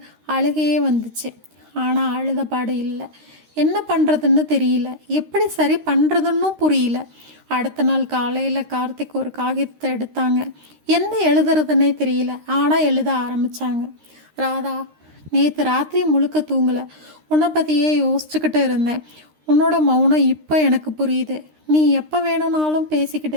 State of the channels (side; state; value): left; late; 13 ms